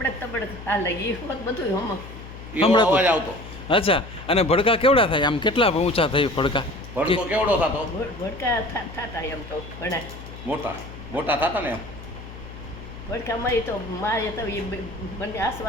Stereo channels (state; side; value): noise; left; hum, 14 dB below the sound